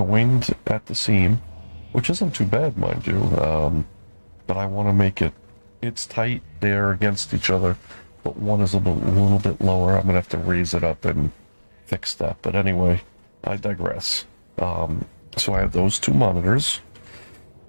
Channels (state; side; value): inverted; both; correlation -1.00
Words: at the seam, which isn't too bad, mind you. But I want to make it, it's tight, they're against each other, but one is a little bit lower. I'm going to have to raise it up and fix that. But anyway, I digress. So I have those two monitors.